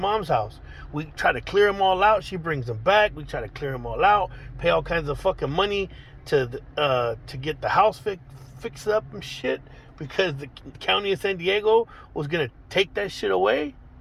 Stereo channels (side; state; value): both; identical; correlation 1.00